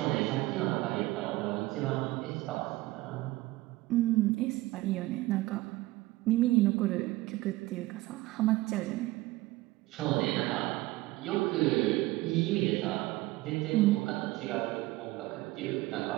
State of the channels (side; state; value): left; quieter; 19.0 dB